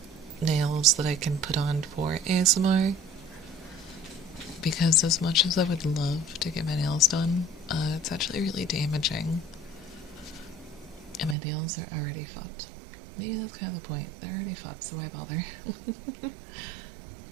nails that I can put on for ASMR. Because as much as I would love to get my nails done, it's actually really damaging. And my nails are already fucked. Maybe that's kind of the point. They're already fucked, so why bother?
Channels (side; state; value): left; drops out; at 11.4 s